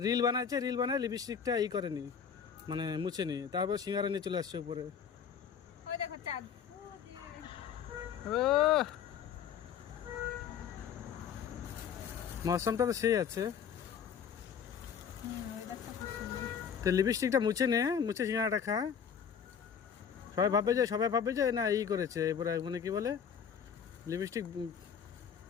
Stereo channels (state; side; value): quieter; right; 7.4 dB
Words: রিল বানাচ্ছে, রিল বানায় লিপস্টিকটা ই করেনি, মানে মুছেনি, তারপর সিঙ্গারা নিয়ে চলে আসছে উপরে। ওই দেখো চাঁদ। ও মৌসমটা তো সেই আছে। তো লিপস্টিকটা মুছে নে, মুছে সিঙ্গারাটা খা। সবাই ভাববে যে না ই করেছে, এবারে মানে কি বলে, লিপস্টিক